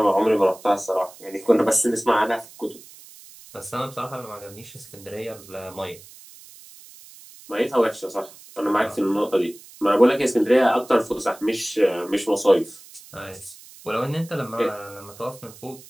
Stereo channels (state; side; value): noise; right; hiss, 21 dB below the sound